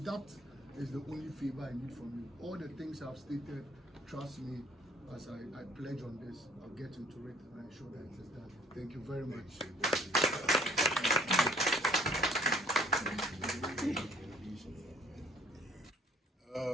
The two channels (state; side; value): normal; both; correlation 0.57